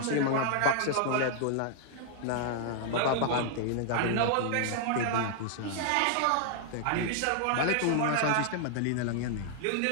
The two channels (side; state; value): both; different; correlation 0.00